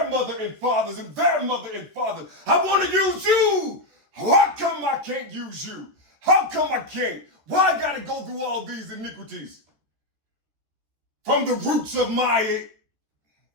mother and fathers, and their mother and fathers. I want to use you. How come I can't use you? How come I can't? Why I gotta go through all these iniquities? From the roots of my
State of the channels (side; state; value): left; late; 13 ms